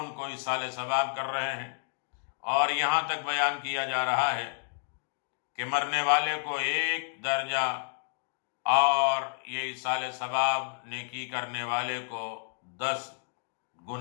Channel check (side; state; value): right; silent; digital silence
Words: کو ایصال ثواب کر رہے ہیں، اور یہاں تک بیان کیا جا رہا ہے کہ مرنے والے کو 1 درجہ اور یہ ایصال ثواب نیکی کرنے والے کو 10